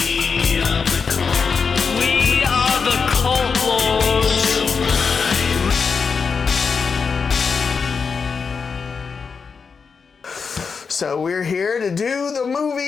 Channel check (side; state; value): right; quieter; 5.5 dB